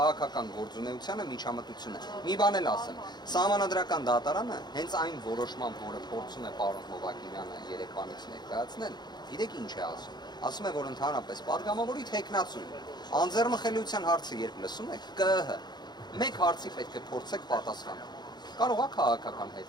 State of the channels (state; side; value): late; right; 0.21 ms